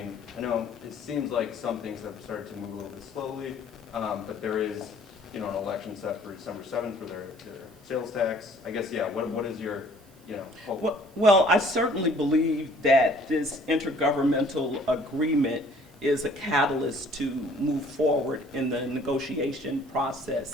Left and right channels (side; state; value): right; noise; hiss, 28 dB below the sound